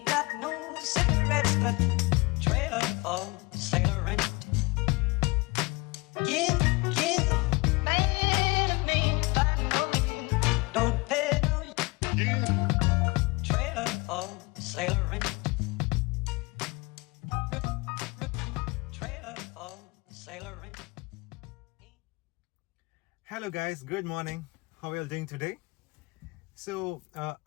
got no cigarettes, but trailer for sailoring. Give me back. Don't pay no trailer for sailoring. Trailer for sailoring. Hello guys, good morning. How are you all doing today? So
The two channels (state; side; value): quieter; right; 25.0 dB